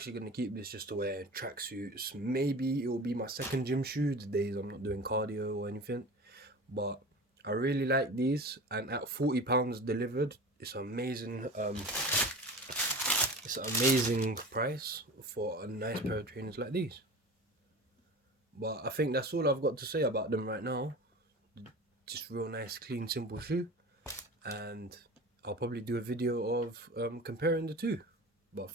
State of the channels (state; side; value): normal; both; correlation 0.34